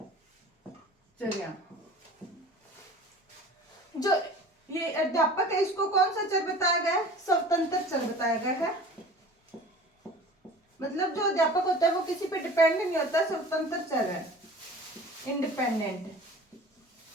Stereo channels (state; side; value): normal; both; correlation 0.42